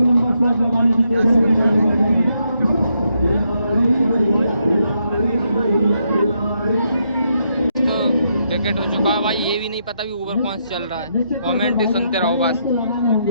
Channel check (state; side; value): inverted; both; correlation -0.78